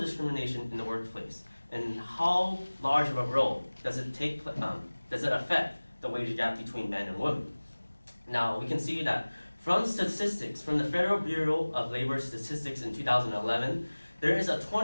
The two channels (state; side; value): inverted; both; correlation -1.00